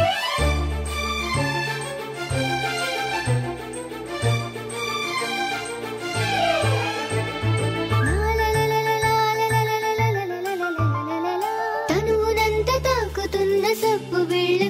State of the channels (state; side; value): identical; both; correlation 1.00